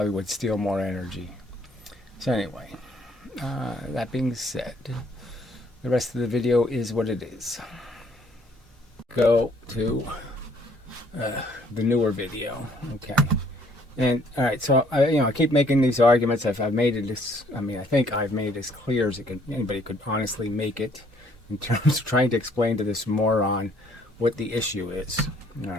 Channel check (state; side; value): normal; both; correlation 0.63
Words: would steal more energy. So anyway, that being said, the rest of the video is what it is. Go to the newer video. Okay. And all right, so I keep making these arguments. I've made it as, I think I've made it as clear as anybody could honestly make it in terms of trying to explain to this moron what the issue is. All